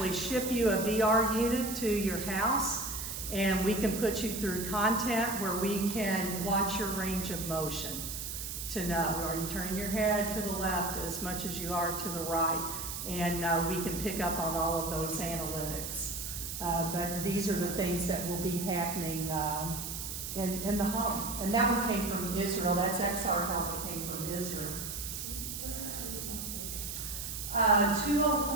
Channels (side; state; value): right; noise; hiss, 6 dB below the sound